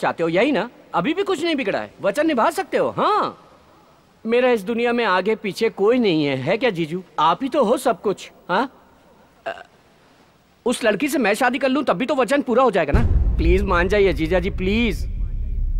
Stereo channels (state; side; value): identical; both; correlation 1.00